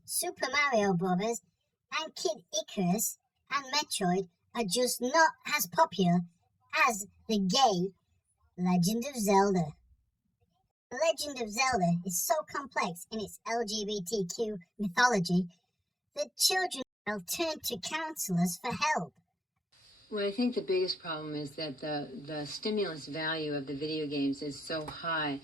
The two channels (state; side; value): normal; both; correlation 0.92